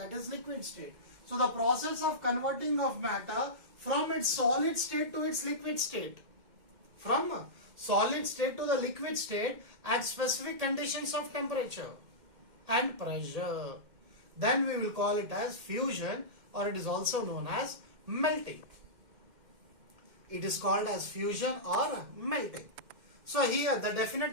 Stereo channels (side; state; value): left; late; 2.1 ms